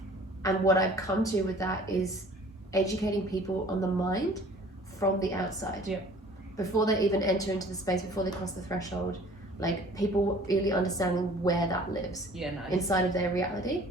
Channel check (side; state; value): both; normal; correlation 0.50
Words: And what I've come to with that is educating people on the mind from the outside. Yeah. Before they even enter into the space, before they cross the threshold, like people really understanding where that lives inside of their reality.